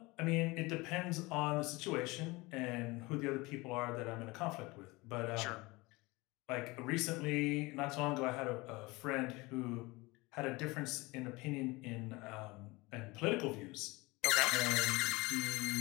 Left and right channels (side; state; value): right; quieter; 23.2 dB